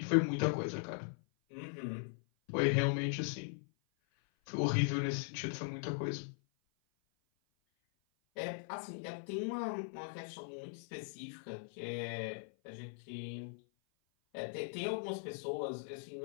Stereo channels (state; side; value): silent; right; 51 dB below the other